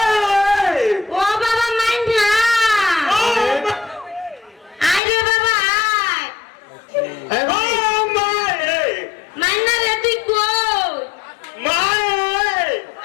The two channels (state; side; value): drops out; right; at 5.0 s